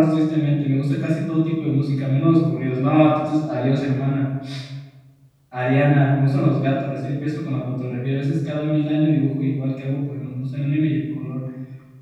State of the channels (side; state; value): both; identical; correlation 1.00